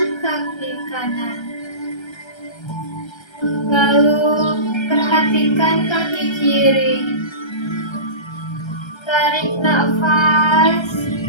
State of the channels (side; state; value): right; late; 1.3 ms